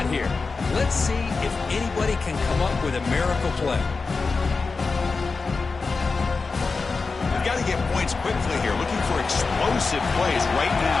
here. Let's see if anybody can come up with a miracle play. We've got to get points quickly here. Looking for explosive plays right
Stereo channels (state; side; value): quieter; right; 4.3 dB